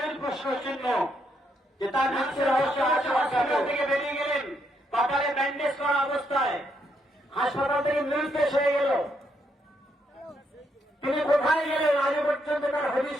প্রশ্ন চিহ্ন, যে তার মৃত্যুর রহস্য হাসপাতাল থেকে বেরিয়ে গেলেন কপালে ব্যান্ডেজ করা অবস্থায়, হাসপাতাল থেকে নির্দেশ হয়ে গেল, তিনি কোথায় গেলেন আজও পর্যন্ত তার হদিশ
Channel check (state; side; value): normal; both; correlation 0.76